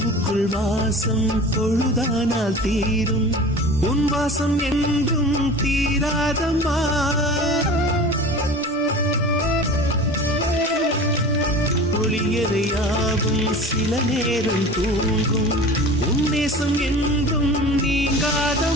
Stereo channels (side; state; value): both; normal; correlation 0.38